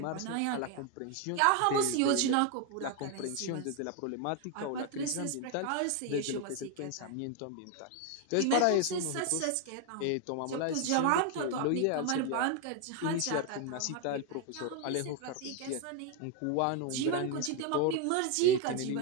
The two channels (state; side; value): different; both; correlation 0.01